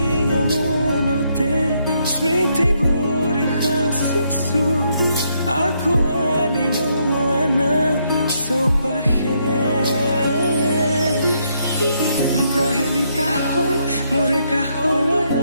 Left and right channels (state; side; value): inverted; both; correlation -0.75